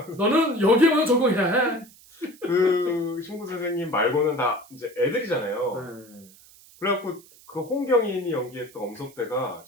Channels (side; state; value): right; noise; hiss, 24 dB below the sound